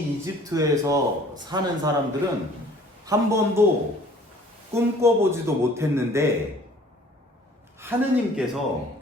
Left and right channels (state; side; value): normal; both; correlation 0.53